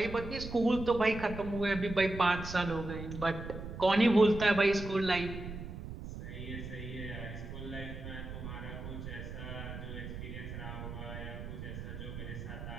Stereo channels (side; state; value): right; noise; rumble, 9 dB below the sound